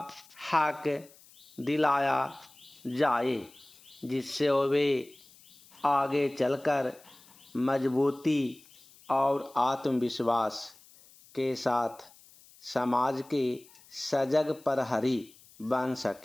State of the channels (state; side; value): noise; left; hiss, 25 dB below the sound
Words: हक दिलाया जाए, जिससे वे आगे चलकर मजबूती और आत्मविश्वास के साथ समाज के सजग प्रहरी बन